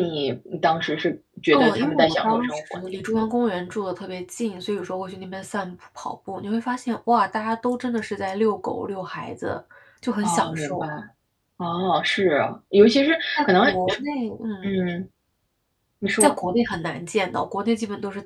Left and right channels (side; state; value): both; identical; correlation 1.00